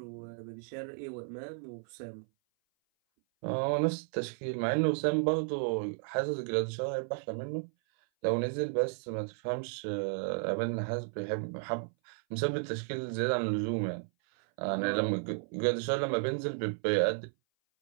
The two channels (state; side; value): silent; left; 56 dB below the other